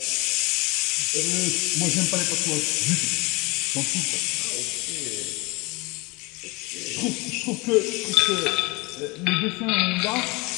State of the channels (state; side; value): quieter; right; 25.8 dB